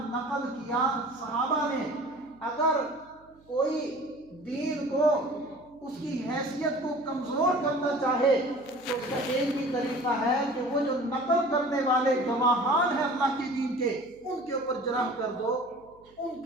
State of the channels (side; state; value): right; noise; hum, 29 dB below the sound